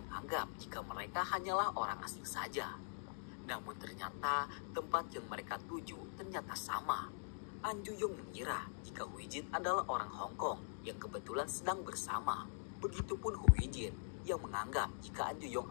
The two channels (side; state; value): right; silent; digital silence